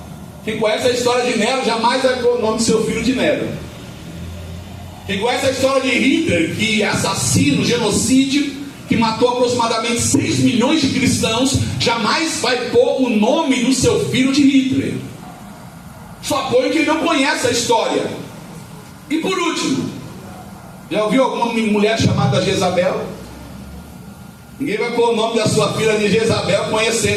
Quem conhece a história de Nero jamais vai pôr o nome do seu filho de Nero. Quem conhece a história de Hitler, que é assassino, genocídio, que matou aproximadamente 6 milhões de cristãos, jamais vai pôr o nome do seu filho de Hitler. Só põe quem não conhece a história. E por último, já ouviu alguma mulher chamada Jezabel? Ninguém vai pôr o nome da sua filha de Jezabel,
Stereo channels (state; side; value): identical; both; correlation 1.00